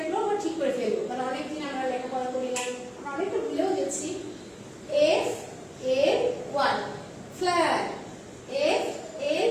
আমরা ঠিক করে ফেলবো, কারণ অনেকদিন আমরা লেখাপড়া করি না, আমরা অনেকটা ভুলেও গেছি। FLY, fly,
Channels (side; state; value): both; identical; correlation 1.00